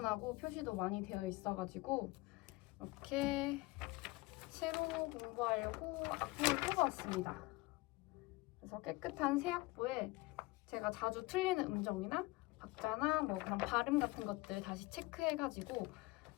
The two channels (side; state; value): right; quieter; 22.1 dB